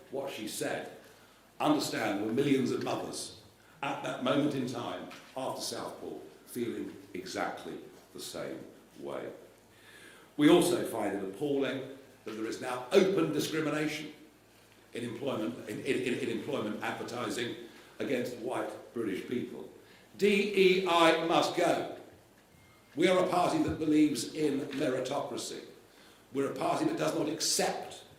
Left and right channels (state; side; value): identical; both; correlation 1.00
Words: what she said, understand there were millions of mothers at that moment in time after Southport feeling exactly the same way. We also find it appalling that there is now open discrimination in employment advertising against white British people. DEI must go. We are a party that believes in meritocracy. We're a party that does not accept